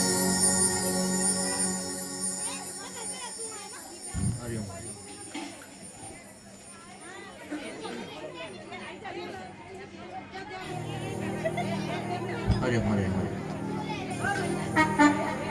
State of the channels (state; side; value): identical; both; correlation 1.00